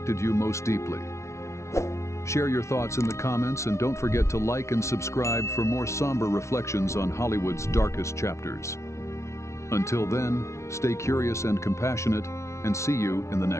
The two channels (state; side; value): late; right; 0.13 ms